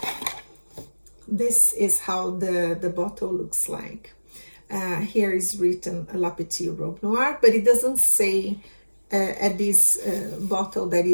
This is how the bottle looks like. Here is written La Petite Robe Noire, but it doesn't say at this bottle that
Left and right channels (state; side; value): inverted; both; correlation -1.00